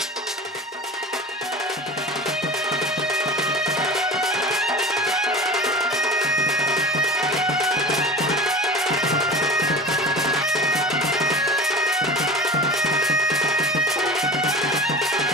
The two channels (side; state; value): both; normal; correlation 0.36